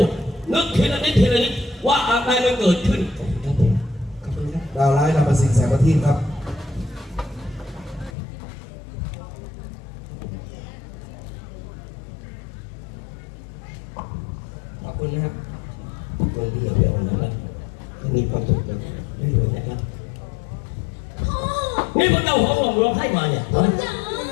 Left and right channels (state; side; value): drops out; right; at 8.1 s